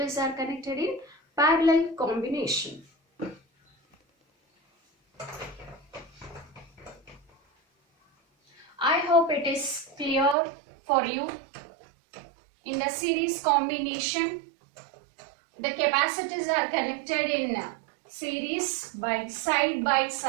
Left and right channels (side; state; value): left; drops out; at 10.4 s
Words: are connected in parallel combination. I hope it is clear for you. In the series combination, the capacitors are connected in series by side,